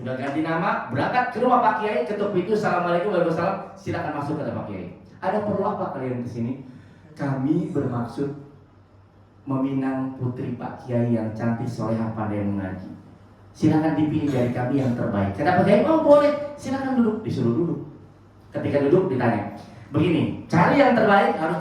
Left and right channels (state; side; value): identical; both; correlation 1.00